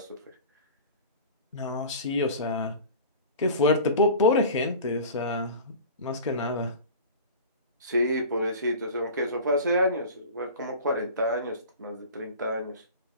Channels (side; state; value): both; inverted; correlation -0.37